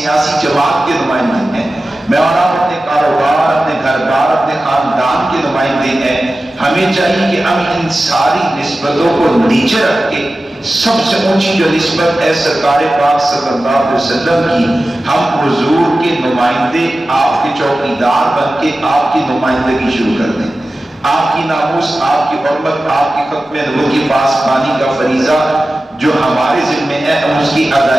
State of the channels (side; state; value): both; normal; correlation 0.95